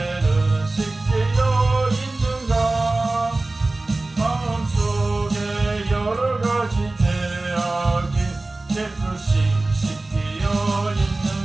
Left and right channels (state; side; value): quieter; left; 3.1 dB